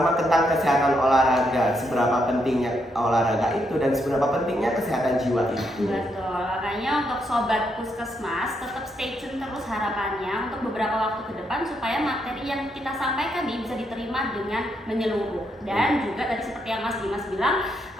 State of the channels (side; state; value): both; normal; correlation 0.78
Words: tentang kesehatan olahraga, seberapa pentingnya olahraga itu dan seberapa pentingnya kesehatan jiwa itu. Betul, makanya untuk sobat Puskesmas tetap stay tune terus harapannya untuk beberapa waktu ke depan supaya materi yang kita sampaikan ini bisa diterima dengan menyeluruh. Dan juga tadi seperti yang Mas Dimas bilang,